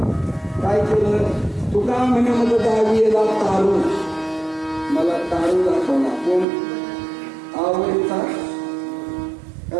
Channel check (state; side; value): drops out; left; at 6.5 s